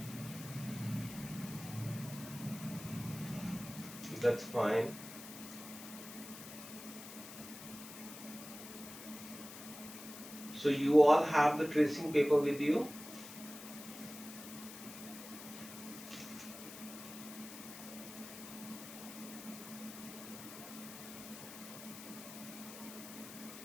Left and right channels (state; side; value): noise; left; hiss, 13 dB below the sound